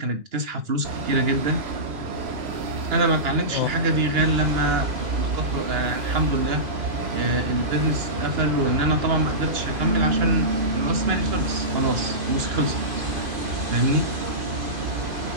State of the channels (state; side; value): late; left; 2.9 ms